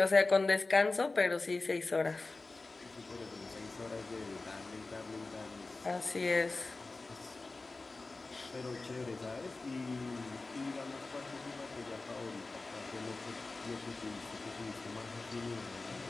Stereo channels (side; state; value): right; quieter; 3.5 dB